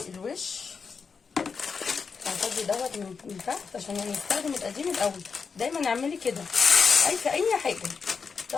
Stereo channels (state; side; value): quieter; right; 5.5 dB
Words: الوش. هفضي دوت من تحت عشان نستخدم القديم الاول. دايما اعملي كده في اي حاجه،